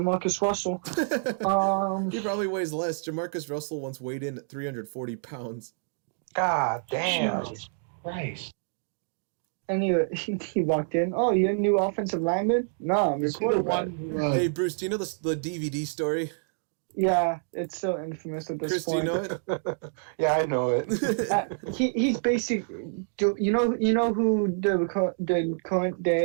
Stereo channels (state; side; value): silent; left; digital silence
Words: Russell. He probably weighs less. Jamarcus Russell once weighed in at 340 pounds. God damn. Jesus Christ. And he walked in. Oh, you're a new offensive lineman? No, I'm your quarterback. Hey, Bruce, do you know the DVD story? Yeah, it's so infamous at this point. Chris, do you know it? Yeah, I know it. He's basically... You know who the current